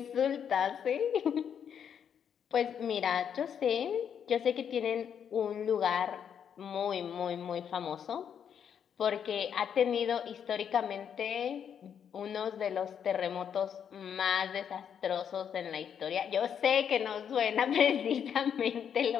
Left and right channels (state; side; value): quieter; right; 8.1 dB